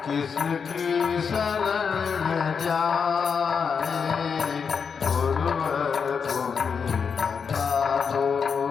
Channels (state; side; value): quieter; right; 6.2 dB